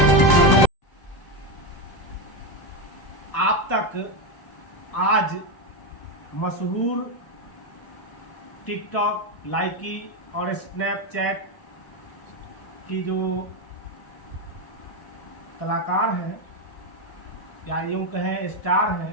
आप तक आज मशहूर टिकटॉक, लाइकी और स्नैपचैट की जो कलाकार हैं या यूँ कहें स्टार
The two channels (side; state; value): right; late; 1.0 ms